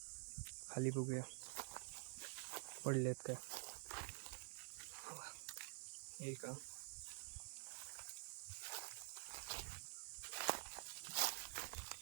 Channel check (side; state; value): left; silent; digital silence